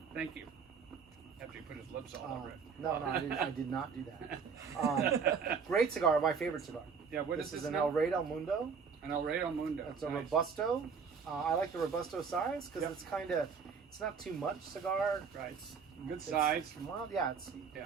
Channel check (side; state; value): left; quieter; 5.9 dB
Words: Thank you. after he put his lips all over it. No, I did not do that. Great cigar, my favorite cigar. Yeah, what This is is an now? El Rey del Mundo. An El Rey del Mundo. It's a Nice. Robusto. I like the Robusto size because Yep. it's kind of, it's not too much cigar. Right. Good size. Well, yeah,